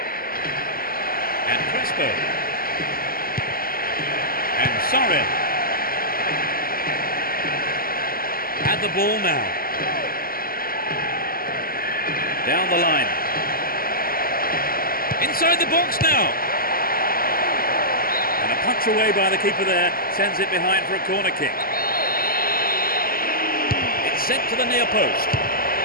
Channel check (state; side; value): late; right; 0.42 ms